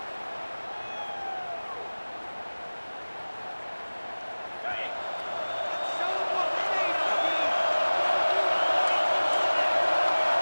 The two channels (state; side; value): inverted; both; correlation -1.00